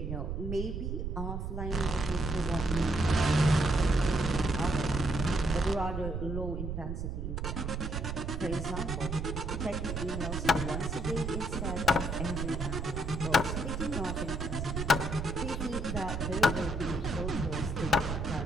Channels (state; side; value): noise; right; rumble, 3 dB below the sound